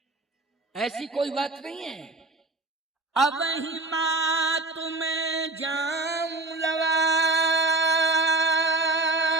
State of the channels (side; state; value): left; quieter; 3.1 dB